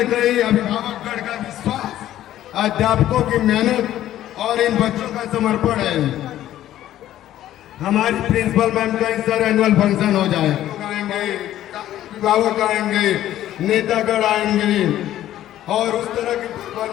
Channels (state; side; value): quieter; right; 12.9 dB